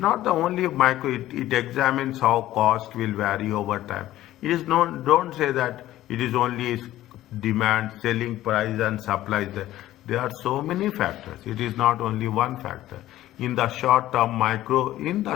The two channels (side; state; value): right; quieter; 14.4 dB